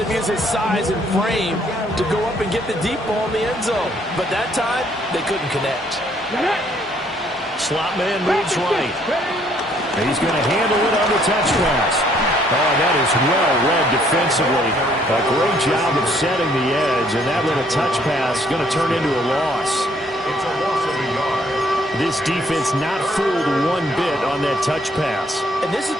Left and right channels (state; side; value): normal; both; correlation 0.65